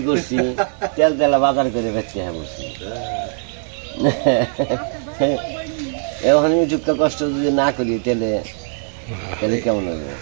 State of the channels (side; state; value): left; silent; digital silence